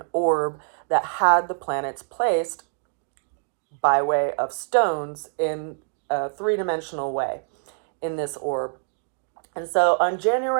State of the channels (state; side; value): silent; left; digital silence